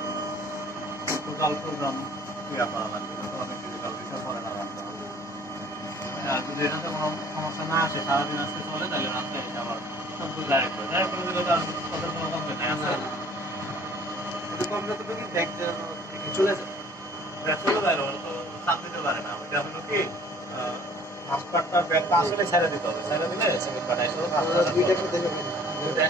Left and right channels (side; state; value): both; normal; correlation 0.54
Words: টোটাল প্রোগ্রাম ক্রিয়া করা লাগবে, তো আমি ডিজিটাল বিষয় পরে লাগাতে হবে। আর যদি এটাতে কোনো সমস্যা না আসে, সারাদিন আজকে চলে, তাহলে রাত্রে এটা আবার সবগুলো ডাইরেক্ট করে দিলে তো আর ওদের কোনো কমপ্লেন নাই আছে। কমপ্লেন তো কি ব্যাগ চলে যায়, ব্যাগ চলে যায়, ওরা তো চাপ দিতে পারে না। ওইটা হলো কি মাস্টারটা ব্যাগটা আসলে ছেড়ে দিতে হবে, ছেড়ে দিলে সেকেন্ড পার্ট আসলে দুইটা